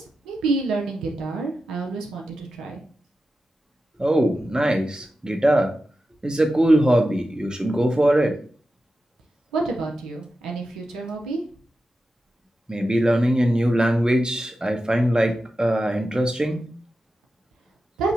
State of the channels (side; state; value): both; normal; correlation 0.91